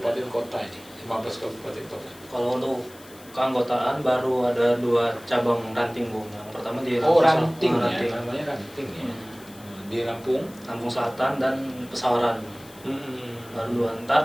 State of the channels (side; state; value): left; noise; hiss, 22 dB below the sound